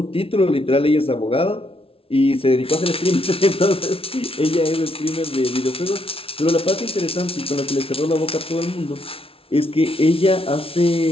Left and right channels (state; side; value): late; right; 0.26 ms